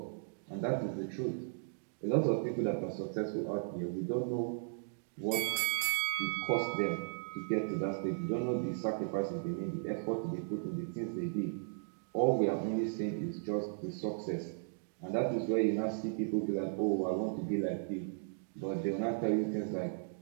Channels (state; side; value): silent; left; digital silence